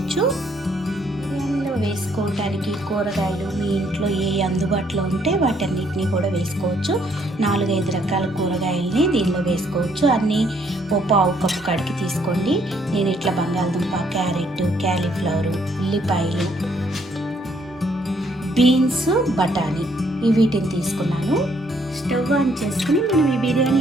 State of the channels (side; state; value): both; normal; correlation 0.68